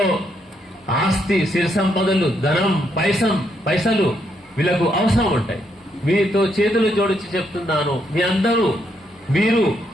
ఆస్తి, సిరి సంపదలు, ధనం, పైసలు వీళ్ళకు అవసరం ఉంటాయి. మీతో చేతులు జోడించి చెప్తున్నాను, మీరు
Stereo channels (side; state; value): both; normal; correlation 0.76